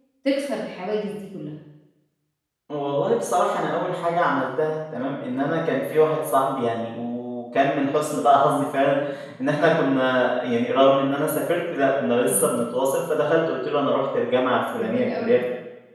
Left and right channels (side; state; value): both; identical; correlation 1.00